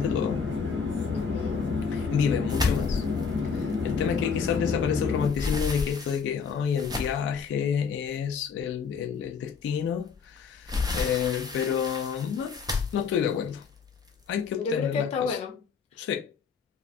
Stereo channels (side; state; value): right; quieter; 6.0 dB